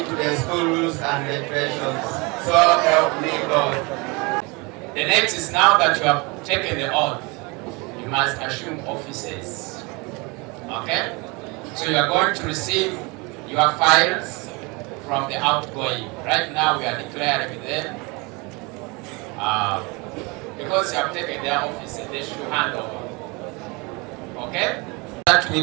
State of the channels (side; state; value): left; quieter; 27.5 dB